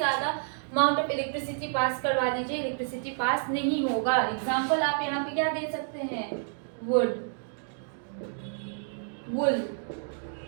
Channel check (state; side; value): silent; left; digital silence